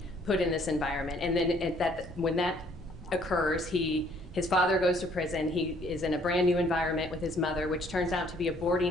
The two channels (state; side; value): normal; both; correlation 0.62